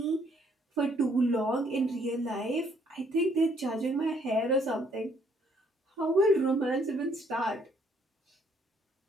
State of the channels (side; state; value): both; normal; correlation 0.66